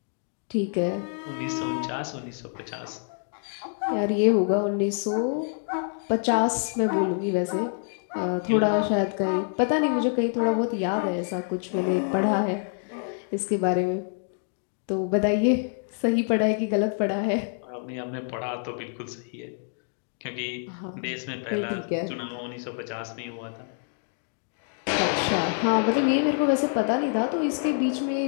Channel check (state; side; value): silent; right; 58 dB below the other